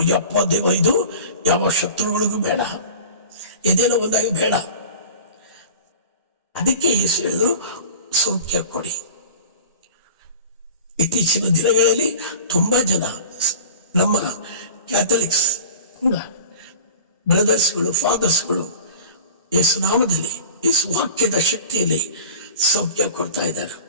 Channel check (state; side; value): inverted; both; correlation -0.37